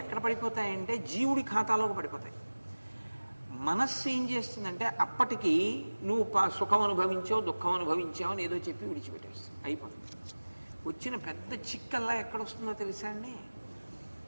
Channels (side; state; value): both; inverted; correlation -1.00